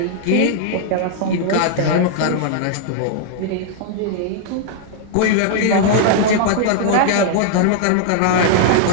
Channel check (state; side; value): different; both; correlation 0.00